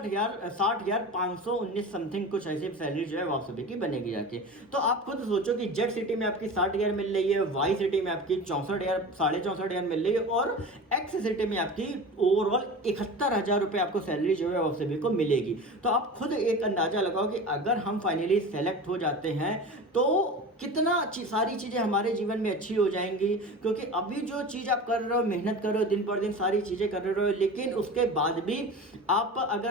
समथिंग कुछ ऐसी सैलरी जो है वो आप सभी की बनेगी जाके। तो आप खुद सोचो कि जेड सिटी में आपकी 60,000 मिल रही है, वाई सिटी में आपकी 64,000, 64,500 मिल रही है, और एक्स सिटी में आपकी ओवरऑल 71,000 रुपये आपको सैलरी जो है वो सभी को मिलेगी। तो आप खुद एक अंदाजा लगाओ कि अगर हम फाइनली सेलेक्ट हो जाते हैं तो कितना सारी चीज़ें हमारे जीवन में अच्छी हो जाएंगी। क्योंकि अभी जो चीज़ आप कर रहे हो, मेहनत कर रहे हो, दिन पर दिन सारी चीज़ें कर रहे हो, लेकिन उसके बाद भी आप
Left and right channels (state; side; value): normal; both; correlation 0.32